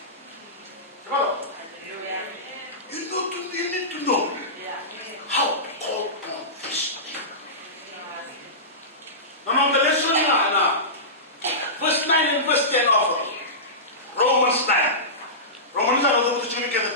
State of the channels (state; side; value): normal; both; correlation -0.19